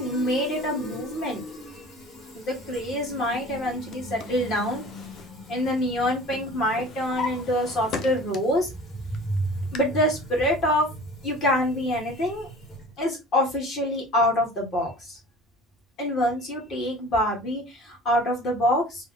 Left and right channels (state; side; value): normal; both; correlation 0.43